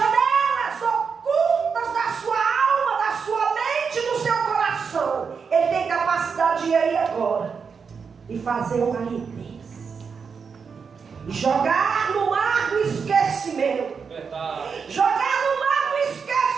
ocultas da sua alma, da sua mente, do seu coração. Ele tem capacidade de ir aí agora e fazer uma limpeza e jogar no mar do esquecimento. Jogar no mar do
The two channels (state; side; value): quieter; left; 5.8 dB